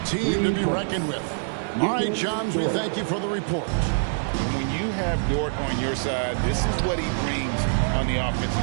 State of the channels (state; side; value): silent; left; digital silence